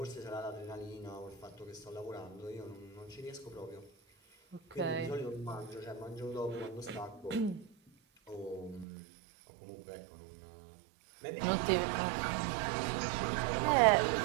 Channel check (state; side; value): drops out; left; at 8.8 s